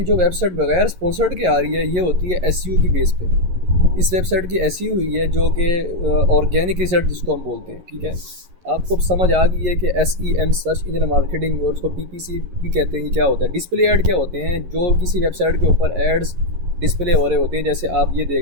जो वेबसाइट बगैर स्पॉन्सर्ड के आ रही है, ये होती है SEO की बेस पे। इस वेबसाइट की SEO हुई है जो कि ऑर्गेनिक रिसर्च जिसको हम बोलते हैं, ठीक है। आपको समझ आ गई है कि SEM सर्च इंजन मार्केटिंग, और उसको PPC भी कहते हैं, क्या होता है। डिस्प्ले ऐड क्या होते हैं, जो किसी वेबसाइट के ऊपर एड्स डिस्प्ले हो रहे होते हैं, जैसे आप ये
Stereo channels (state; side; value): late; left; 11 ms